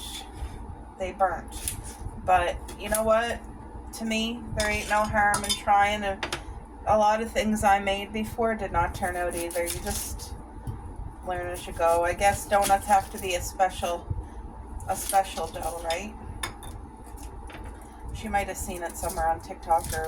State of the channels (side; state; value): both; identical; correlation 1.00